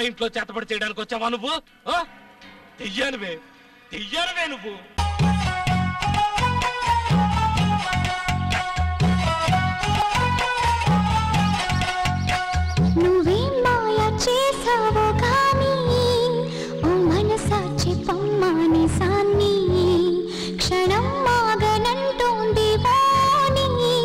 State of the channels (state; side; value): identical; both; correlation 1.00